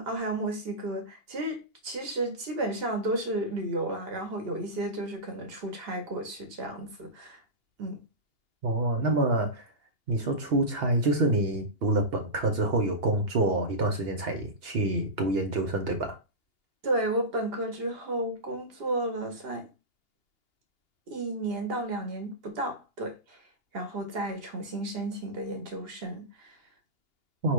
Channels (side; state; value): left; late; 2.8 ms